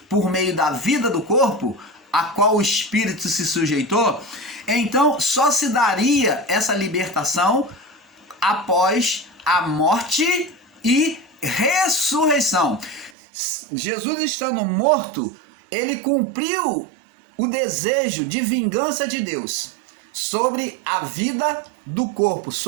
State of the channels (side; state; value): left; drops out; at 13.1 s